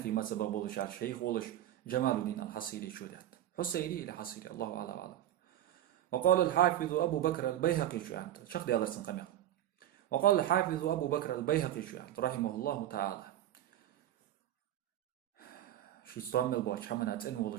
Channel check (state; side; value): quieter; left; 12.3 dB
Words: مذهب والشار شيخ ولش جمال الدين الحصيري شودات حصيري إلى حصيري الله أعلم. وقال الحافظ أبو بكر البيهقي شوانت شخ دي أدرسن قميل. وقال الحافظ أبو بكر البيهقي شوانت رحمه الله تعالى شي استعمل بوش حمنات إن